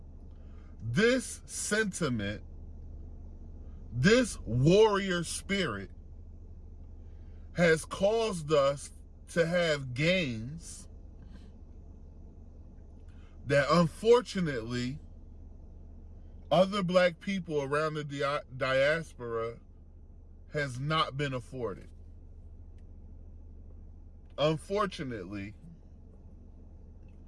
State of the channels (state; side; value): identical; both; correlation 1.00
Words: this sentiment, this warrior spirit has caused us to have gains that unfortunately other Black people around the diaspora has not been afforded. Unfortunately,